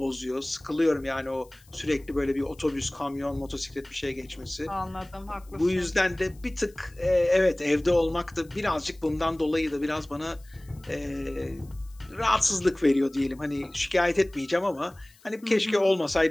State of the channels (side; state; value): left; noise; hiss, 28 dB below the sound